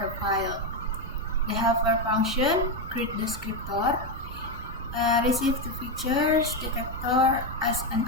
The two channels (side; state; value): right; noise; rumble, 14 dB below the sound